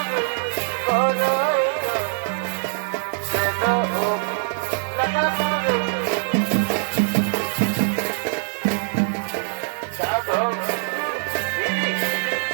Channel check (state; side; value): silent; left; 63 dB below the other